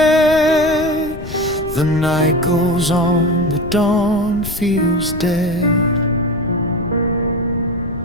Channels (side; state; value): left; noise; rumble, 11 dB below the sound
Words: The night goes on, the dawn feels dead,